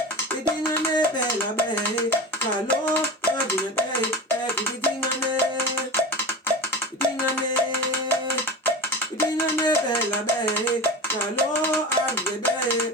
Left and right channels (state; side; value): normal; both; correlation 0.29